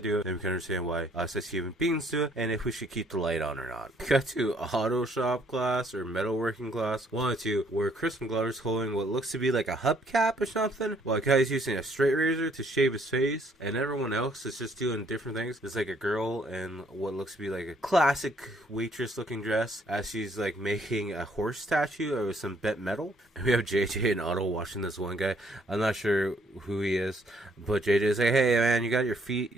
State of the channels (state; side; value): normal; both; correlation 0.65